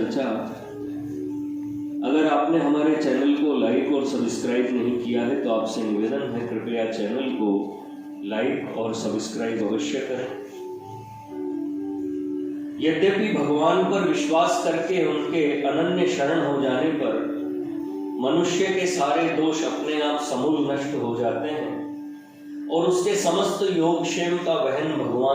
अगर आपने हमारे चैनल को लाइक और सब्सक्राइब नहीं किया है तो आपसे निवेदन है, कृपया चैनल को लाइक और सब्सक्राइब अवश्य करें। यद्यपि भगवान पर विश्वास करके उनके अनन्य शरण हो जाने पर मनुष्य के सारे दोष अपने आप समूल नष्ट हो जाते हैं और उसके समस्त योगक्षेम का वहन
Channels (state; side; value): identical; both; correlation 1.00